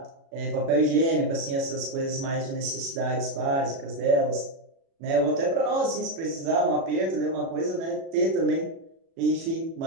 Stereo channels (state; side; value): late; left; 36 ms